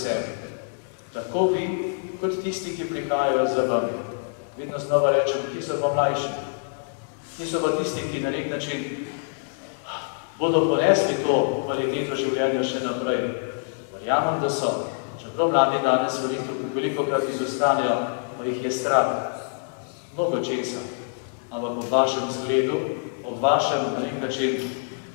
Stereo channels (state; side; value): silent; right; digital silence